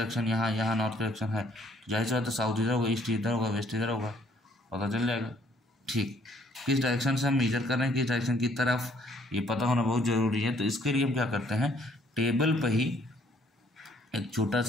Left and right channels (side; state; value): both; normal; correlation 0.64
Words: यहाँ यहाँ नॉर्थ की डायरेक्शन है, तो जाहिर सी बात है साउथ इधर होगा, ईस्ट इधर होगा, वेस्ट इधर होगा, पता चल जाएगा, ठीक। किस डायरेक्शन से हम मेजर कर रहे हैं, किस डायरेक्शन की तरफ, ये पता होना बहुत ज़रूरी है। तो इसके लिए हम क्या करते हैं, टेबल पर ही एक छोटा